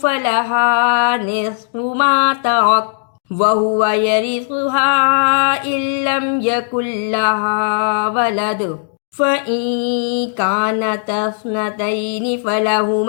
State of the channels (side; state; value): right; silent; digital silence